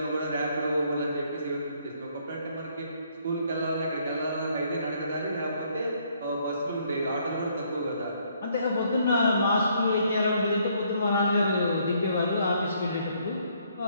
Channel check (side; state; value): both; inverted; correlation -0.68